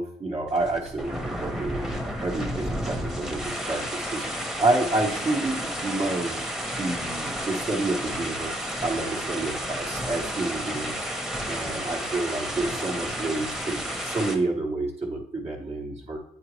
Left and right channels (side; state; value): both; normal; correlation 0.72